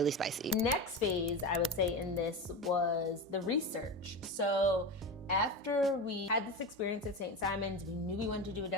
spicy. Next phase, I would say in this was the research. So after we had this experience at St. Simon's, we knew we wanted to do a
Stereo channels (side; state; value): both; normal; correlation 0.23